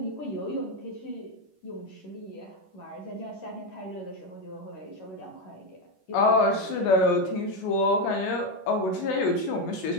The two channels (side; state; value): right; late; 11 ms